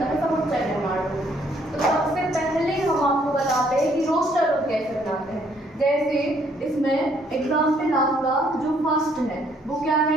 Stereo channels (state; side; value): normal; both; correlation 0.66